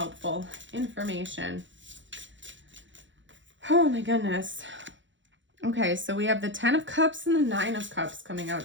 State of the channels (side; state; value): left; late; 0.54 ms